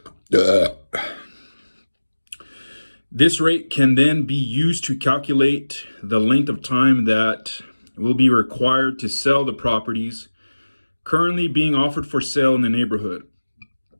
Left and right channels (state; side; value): inverted; both; correlation -1.00